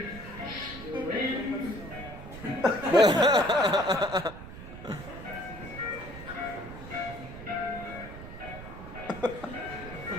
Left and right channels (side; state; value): right; noise; rumble, 12 dB below the sound